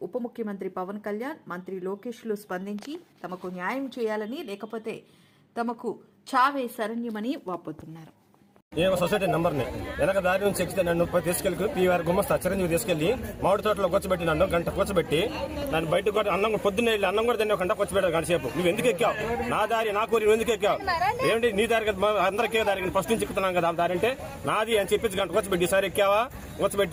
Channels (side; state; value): both; identical; correlation 1.00